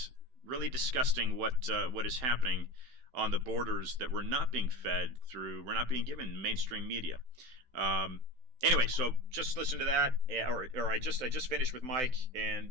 really disgusting what is happening on the borders that we're not being fed through. We're not being given mainstream media. Anyway, so just listen to that, or I just finished with Mike,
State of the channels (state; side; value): late; left; 16 ms